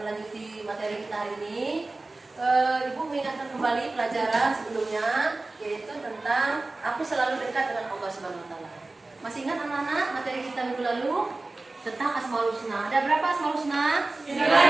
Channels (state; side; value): quieter; left; 3.2 dB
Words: melanjuti materi kita hari ini, Ibu mengingatkan kembali pelajaran sebelumnya, yaitu tentang aku selalu dekat dengan Allah Subhanahu wa Ta'ala. Masih ingat anak-anak materi kita minggu lalu tentang Asmaul Husna? Ada berapa Asmaul Husna?